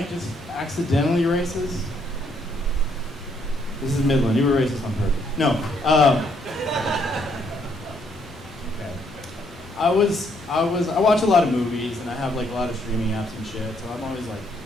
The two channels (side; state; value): both; normal; correlation 0.70